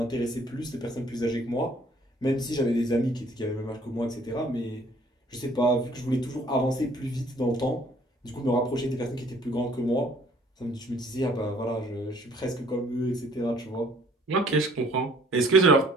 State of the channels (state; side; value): normal; both; correlation 0.58